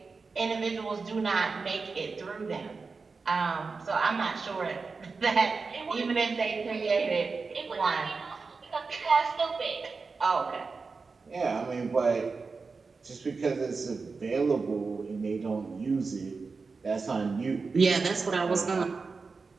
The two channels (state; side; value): quieter; left; 4.5 dB